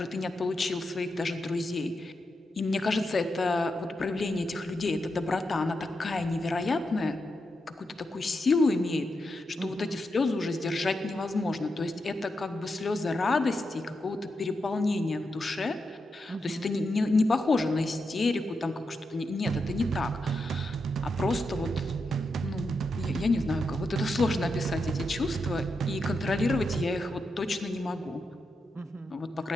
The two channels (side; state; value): both; normal; correlation 0.86